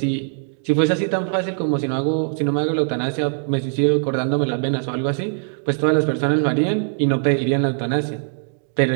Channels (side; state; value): left; silent; digital silence